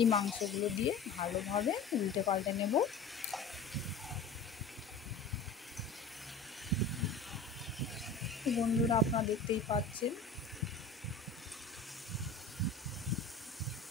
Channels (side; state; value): right; quieter; 4.1 dB